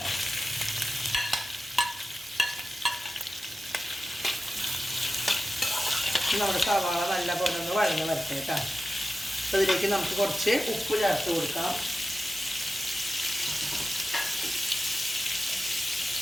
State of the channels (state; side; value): normal; both; correlation 0.93